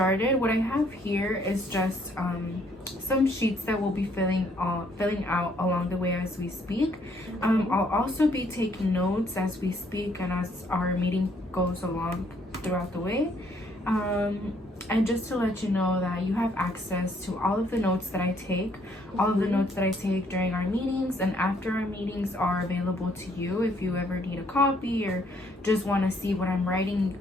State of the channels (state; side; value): normal; both; correlation 0.66